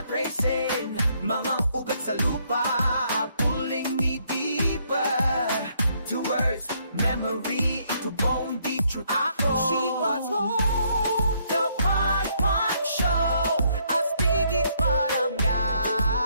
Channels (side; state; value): both; inverted; correlation -0.70